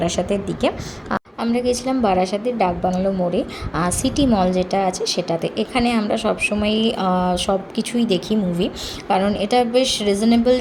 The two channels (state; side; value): identical; both; correlation 1.00